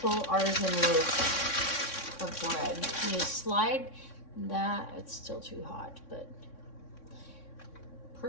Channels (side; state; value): right; late; 3.6 ms